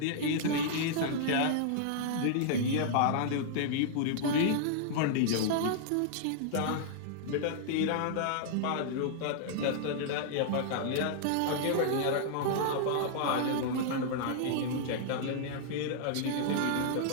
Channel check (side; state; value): both; different; correlation -0.01